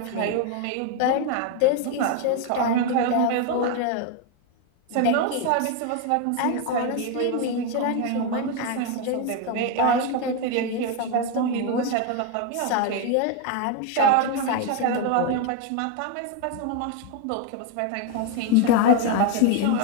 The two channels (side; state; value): both; different; correlation 0.01